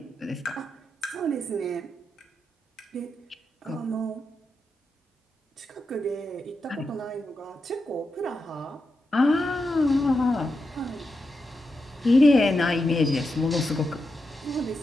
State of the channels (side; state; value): both; normal; correlation 0.87